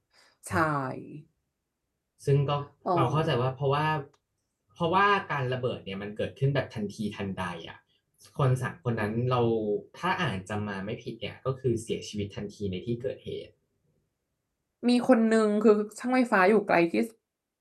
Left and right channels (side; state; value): both; identical; correlation 1.00